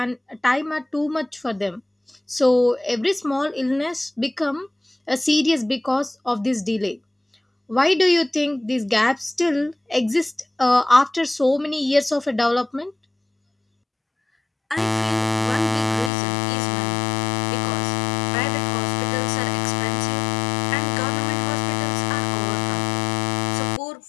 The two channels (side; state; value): right; drops out; at 16.1 s